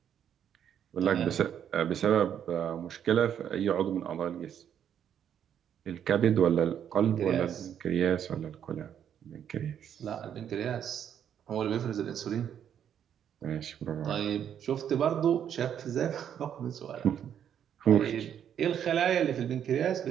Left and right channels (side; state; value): left; quieter; 9.2 dB